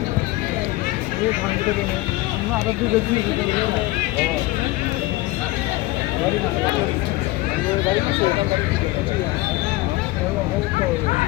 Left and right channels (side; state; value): right; quieter; 19.5 dB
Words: আমরা আরো দুটো দিন